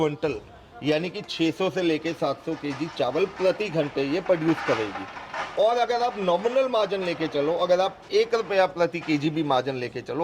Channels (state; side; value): identical; both; correlation 1.00